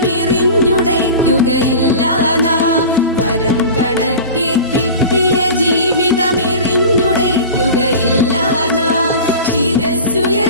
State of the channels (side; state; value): both; inverted; correlation -0.35